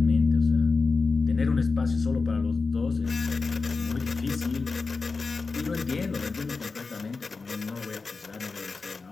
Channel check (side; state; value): right; quieter; 4.3 dB